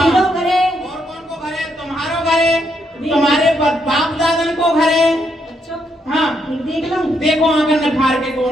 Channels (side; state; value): both; normal; correlation 0.77